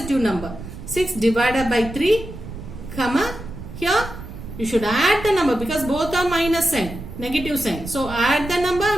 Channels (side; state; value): right; noise; rumble, 11 dB below the sound